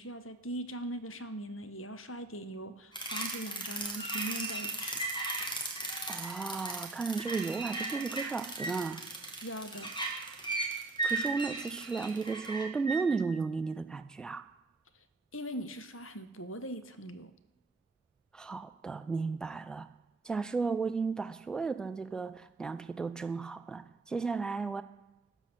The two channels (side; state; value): left; quieter; 3.4 dB